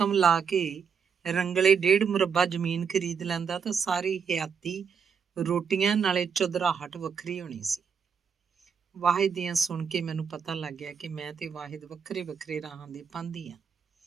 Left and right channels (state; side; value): quieter; left; 6.6 dB